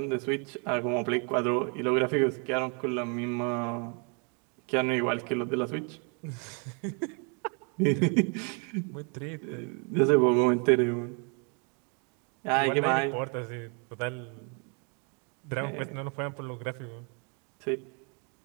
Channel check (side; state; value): left; quieter; 36.3 dB